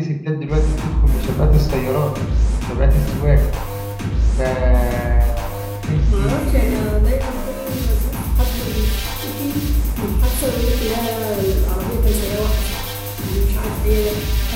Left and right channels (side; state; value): both; identical; correlation 1.00